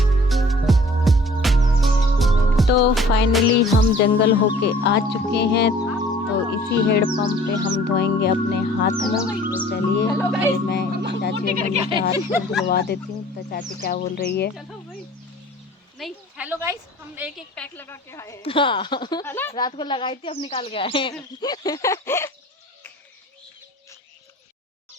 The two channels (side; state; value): both; normal; correlation 0.51